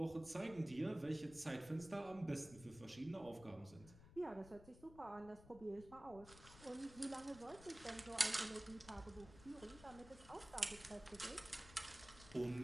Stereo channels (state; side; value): noise; left; rumble, 17 dB below the sound